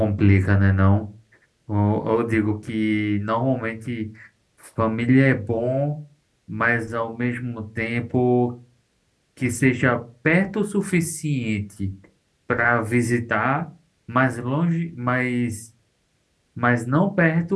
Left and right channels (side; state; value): both; identical; correlation 1.00